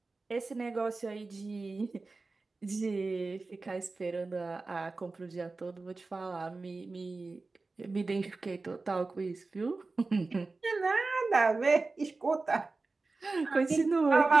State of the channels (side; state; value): left; quieter; 3.7 dB